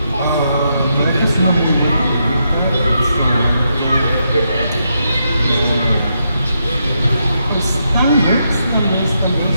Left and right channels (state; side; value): inverted; both; correlation -0.81